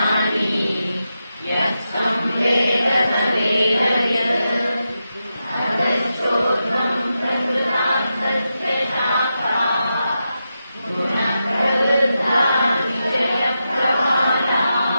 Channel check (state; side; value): inverted; both; correlation -0.88